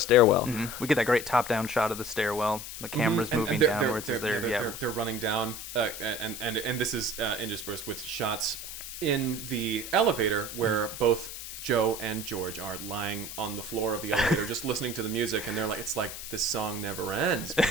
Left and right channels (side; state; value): left; noise; hiss, 9 dB below the sound